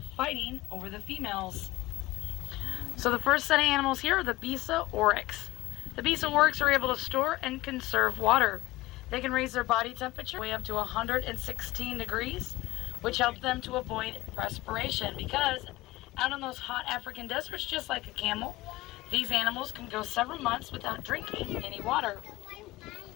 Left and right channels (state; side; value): quieter; right; 18.7 dB